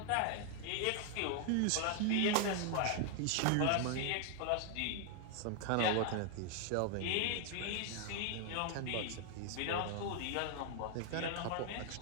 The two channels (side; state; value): both; different; correlation 0.00